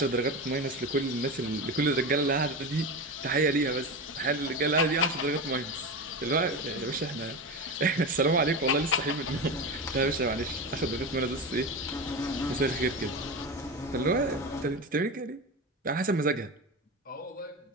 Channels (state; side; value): normal; both; correlation 0.22